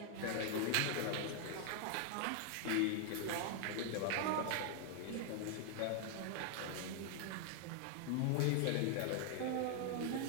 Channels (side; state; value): both; different; correlation 0.00